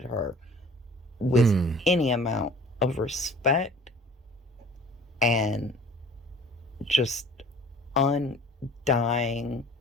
her with any amount of respect and just undying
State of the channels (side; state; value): both; normal; correlation 0.48